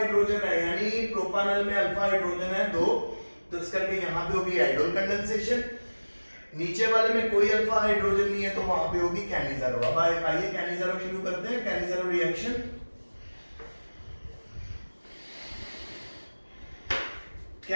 है, यानी प्रोपानल में अल्फा हाइड्रोजन है 2, तो इस करके यहां पे होगी आइडोल कंडेंसेशन। नीचे वाले में कोई अल्फा हाइड्रोजन नहीं है तो वहां पे होगी कैनिज़ारो। अब आइए कैनिज़ारो शुरू करते हैं, Cannizzaro reaction.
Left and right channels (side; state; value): both; inverted; correlation -1.00